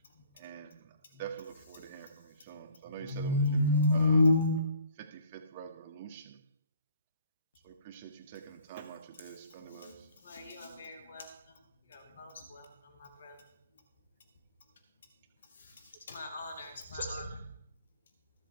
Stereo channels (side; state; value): both; inverted; correlation -0.56